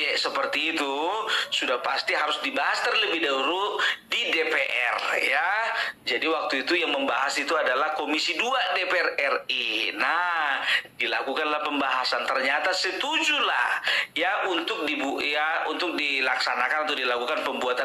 seperti itu, sudah pasti harus dibahas terlebih dahulu di DPR ya. Jadi waktu itu yang membahas itu adalah Komisi 2 DPR RI. Nah, dilakukanlah pembahasan, ternyata setujulah ya untuk dilaksanakan atau dilakukan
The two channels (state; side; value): identical; both; correlation 1.00